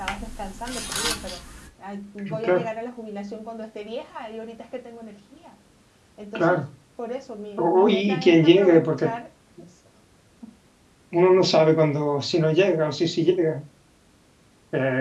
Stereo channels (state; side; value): identical; both; correlation 1.00